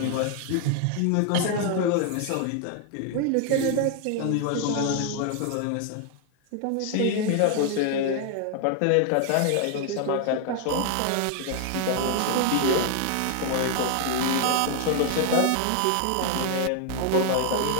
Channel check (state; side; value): different; both; correlation 0.00